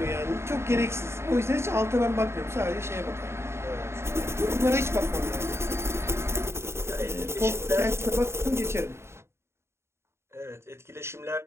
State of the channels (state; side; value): late; left; 0.13 ms